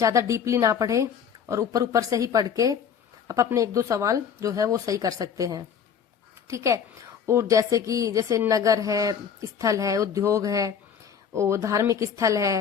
डीपली ना पढ़े, और ऊपर ऊपर से ही पढ़ के आप अपने 1-2 सवाल जो है वो सही कर सकते हैं, ठीक है। और जैसे नगर है, स्थल है, उद्योग है, और धार्मिक स्थल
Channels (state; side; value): quieter; right; 7.5 dB